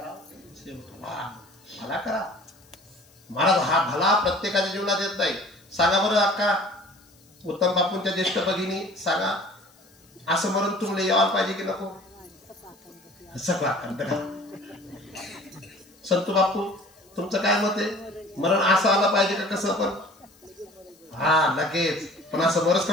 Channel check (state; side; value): noise; left; hiss, 29 dB below the sound